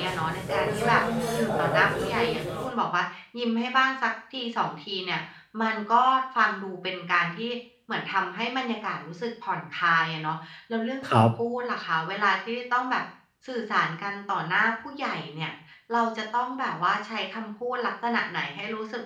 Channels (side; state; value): both; identical; correlation 1.00